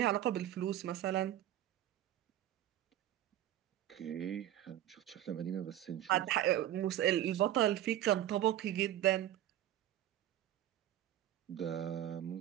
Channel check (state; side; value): quieter; left; 12.5 dB